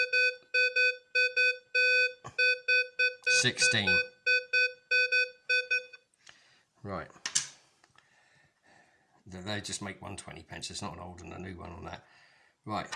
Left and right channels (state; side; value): identical; both; correlation 1.00